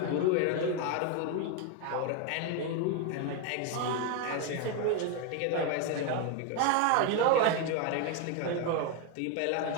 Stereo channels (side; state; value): both; different; correlation 0.02